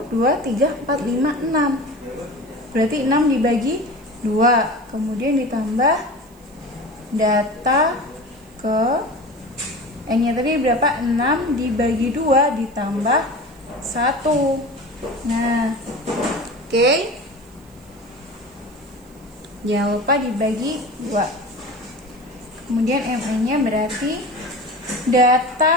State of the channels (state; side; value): noise; right; hiss, 29 dB below the sound